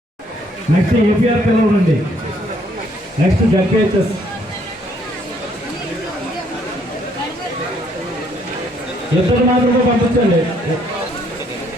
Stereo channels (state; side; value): normal; both; correlation 0.67